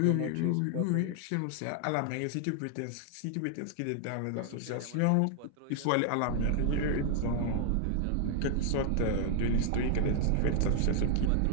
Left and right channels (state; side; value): different; both; correlation 0.00